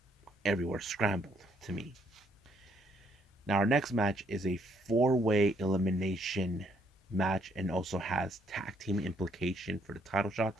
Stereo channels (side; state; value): both; normal; correlation 0.69